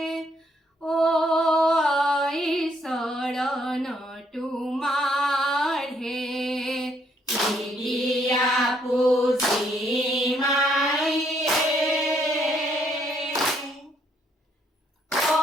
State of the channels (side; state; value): both; normal; correlation 0.70